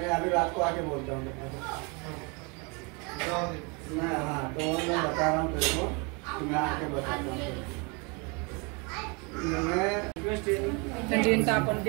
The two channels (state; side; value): quieter; left; 31.1 dB